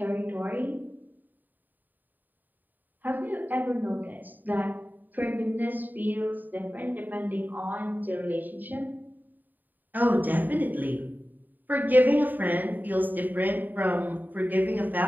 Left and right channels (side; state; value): left; late; 0.088 ms